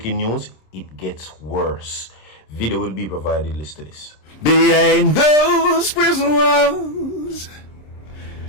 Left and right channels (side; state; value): right; late; 26 ms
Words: news, it gets worse. Video will be provided. Listen to this. Behind those prison walls,